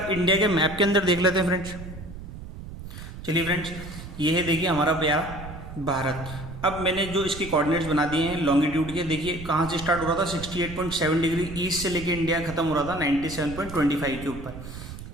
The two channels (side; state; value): right; noise; rumble, 12 dB below the sound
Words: इंडिया के मैप के अंदर देख लेते हैं फ्रेंड्स। चलिए फ्रेंड्स, ये है देखिए हमारा प्यारा भारत। अब मैंने जो इसके कोऑर्डिनेट्स बना दिए हैं लॉन्गिट्यूड के, देखिए कहाँ से स्टार्ट हो रहा था, 68.7 डिग्री ईस्ट से लेके इंडिया खत्म हो रहा था 97.25 के ऊपर।